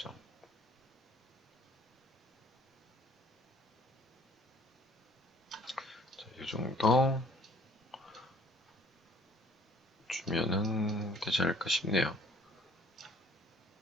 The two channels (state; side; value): normal; both; correlation 0.56